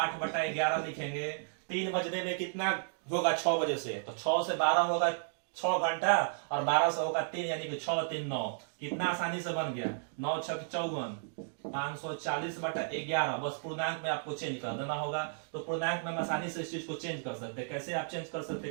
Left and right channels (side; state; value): left; silent; digital silence